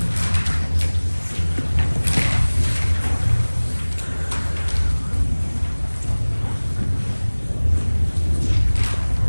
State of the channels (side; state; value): both; inverted; correlation -1.00